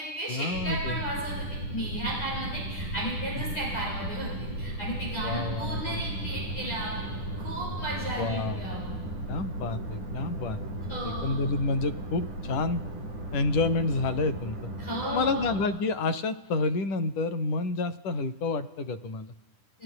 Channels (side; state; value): right; late; 10 ms